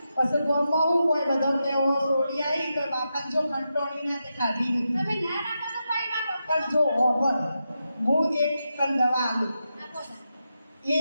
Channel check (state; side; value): inverted; both; correlation -0.87